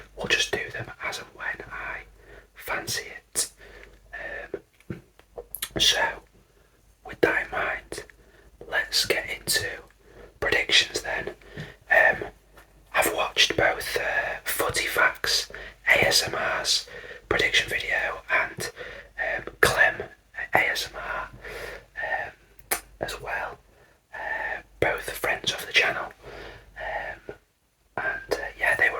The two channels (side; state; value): both; identical; correlation 1.00